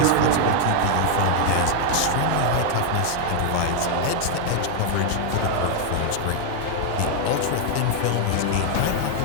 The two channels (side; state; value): both; different; correlation 0.00